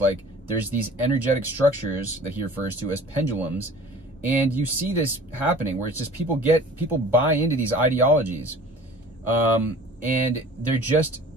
like there's these energetic structures that he refers to as pendulums. And you see this happening, where it's just people buy into these ideologies, and they're just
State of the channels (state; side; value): normal; both; correlation 0.45